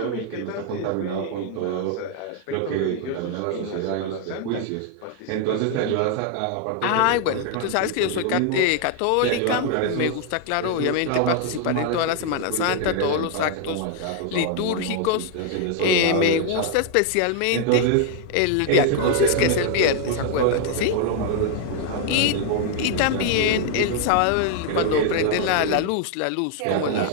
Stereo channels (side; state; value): both; different; correlation 0.00